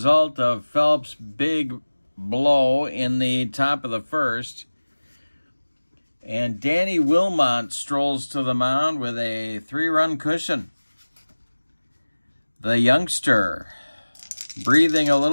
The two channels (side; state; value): both; inverted; correlation -1.00